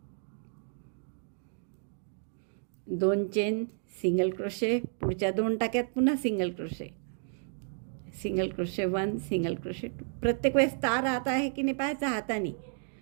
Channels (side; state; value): left; silent; digital silence